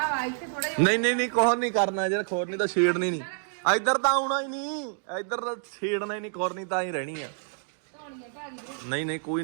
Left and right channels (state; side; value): silent; left; digital silence